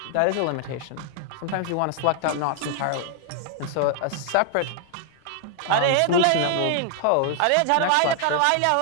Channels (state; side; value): different; both; correlation 0.00